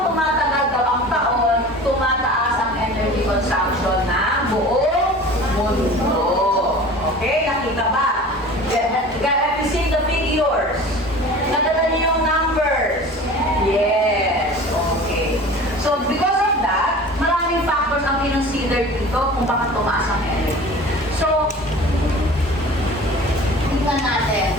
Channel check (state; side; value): normal; both; correlation 0.40